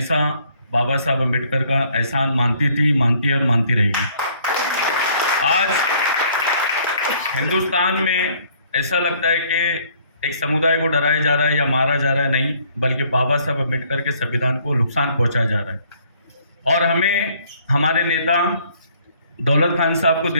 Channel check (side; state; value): both; inverted; correlation -0.61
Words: बाबा साहब अम्बेडकर का एहसान मानती थी, मानती है और मानती रहेगी. आज हिंदुस्तान में ऐसा लगता है कि एक समुदाय को डराया जा रहा है या मारा जा रहा है, नहीं, बल्कि बाबा साहब अम्बेडकर के संविधान को नुकसान पहुंचाया जा रहा है. और हमें हमारे नेता दौलत खान साहब को